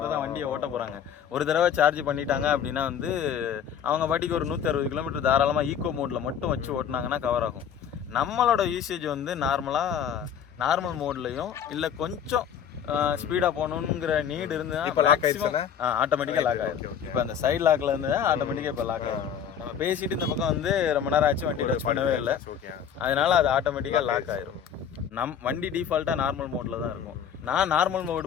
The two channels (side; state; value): right; quieter; 8.4 dB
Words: தான் வண்டியை ஓட்ட போறாங்க. ஒரு தடவை சார்ஜ் பண்ணிட்டாங்க அப்படின்னா வந்து அவங்க பாட்டிக்கு ஒரு 160 கிலோமீட்டர் தாராளமா ஈகோ மோட்ல மட்டும் வச்சு ஓட்டினாங்கன்னா கவர் ஆகும். நம்மளோட யூசேஜ் வந்து நார்மல் மோட்லயும் இல்ல கொஞ்சம் ஸ்பீடா போகணுங்கிற நீட் இருந்ததுன்னா ஆட்டோமேட்டிக்கா லாக் ஆயிடும். இப்போ அந்த சைட் லாக்ல இருந்து ஆட்டோமேட்டிக்கா இப்போ லாக் ஆயிடும். நம்ம பேசிட்டு இந்த பக்கம் வந்து ரொம்ப நேரம் ஆச்சு வண்டி டச் பண்ணவே இல்லை, அதனால அது ஆட்டோமேட்டிக்கா லாக் ஆயிரும். வண்டி டிஃபால்ட்டா நார்மல் மோட்ல தான் இருக்கும். நான் நார்மல்